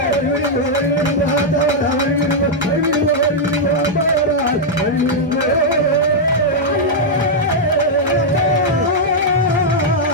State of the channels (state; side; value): normal; both; correlation -0.03